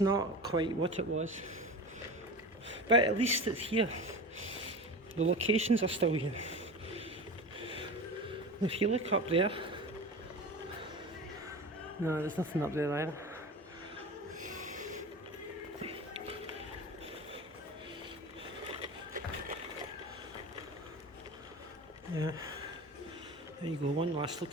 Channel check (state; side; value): normal; both; correlation 0.30